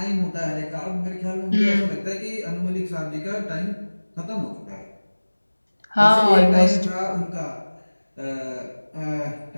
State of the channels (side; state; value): both; inverted; correlation -1.00